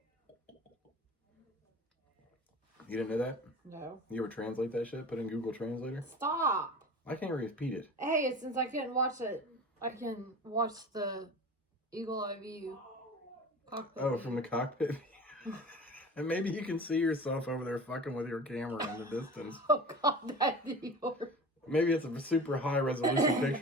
You didn't know that? No. You ever translate that shit? Put in Google Translator? Stop. I can't repeat it. Hey, since I couldn't watch it, I can watch the Eagle Eye View cockpit. Oh, from the cockpit? And maybe you can see yourself over there fucking with your camera in the distance. Oh, God, that'd be horrible. Maybe it's a super high resolution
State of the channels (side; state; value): both; normal; correlation 0.36